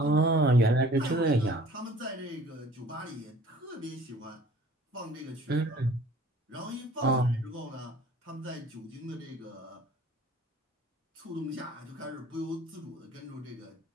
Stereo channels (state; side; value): normal; both; correlation 0.50